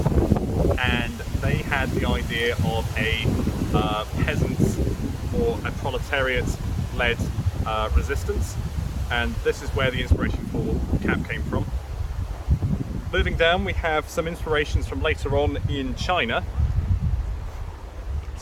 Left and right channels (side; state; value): both; identical; correlation 1.00